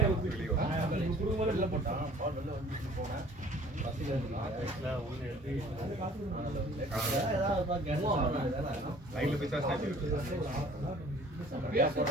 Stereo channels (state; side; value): normal; both; correlation 0.51